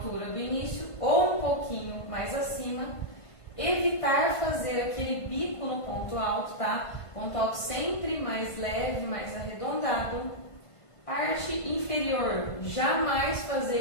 do início ou um pouquinho mais acima. Evitar fazer aquele bico no ponto alto, tá? Ponto alto sempre mais leve, mais arredondado. Parte inferior, jamais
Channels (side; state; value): right; late; 1.5 ms